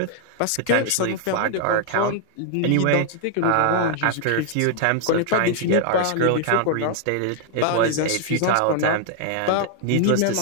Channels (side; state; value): both; different; correlation 0.00